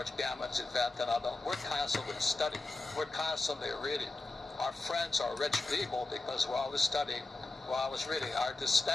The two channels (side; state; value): right; quieter; 3.1 dB